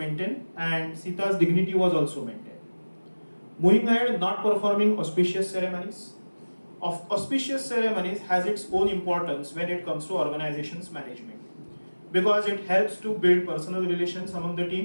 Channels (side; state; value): both; inverted; correlation -1.00